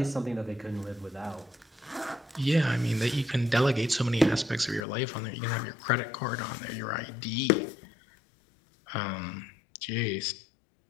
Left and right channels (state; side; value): drops out; right; at 4.8 s